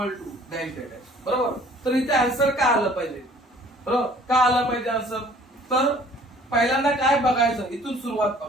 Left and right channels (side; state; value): both; normal; correlation 0.54